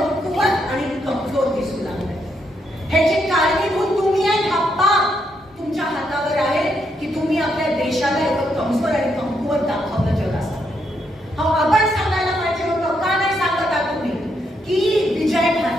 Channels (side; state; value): both; normal; correlation 0.78